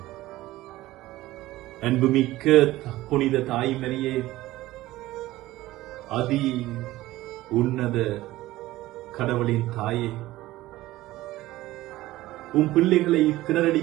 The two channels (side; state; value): left; quieter; 16.8 dB